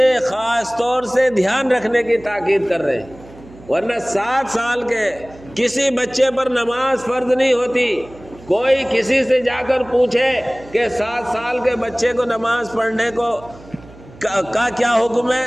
خاص طور سے دھیان رکھنے کی تاکید کر رہے ہیں۔ ورنہ 7 سال کے کسی بچے پر نماز فرض نہیں ہوتی۔ کوئی کسی سے جا کر پوچھے کہ 7 سال کے بچے کو نماز پڑھنے کا کیا حکم ہے،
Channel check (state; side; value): noise; right; hum, 21 dB below the sound